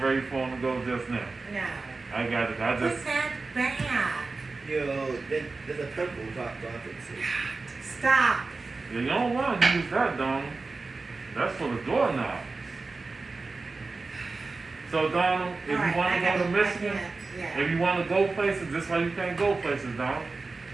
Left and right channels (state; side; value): quieter; left; 3.8 dB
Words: ready for him to go just now. No. I got it. I Put just. that back. There's a pimple drop it. Stop. Yeah, you don't want to use that, Donald. That's for the doorknob. So Donald, if you want to go to Michigan, if you want to go places, this why you can't go places, Donald.